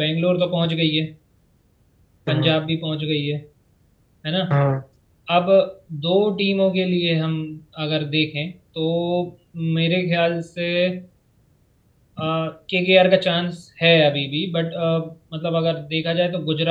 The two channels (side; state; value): both; identical; correlation 1.00